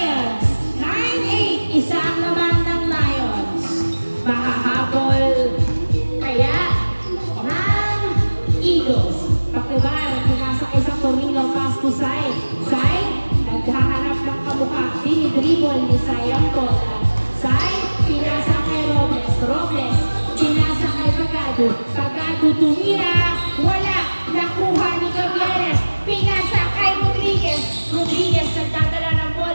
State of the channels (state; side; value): inverted; both; correlation -1.00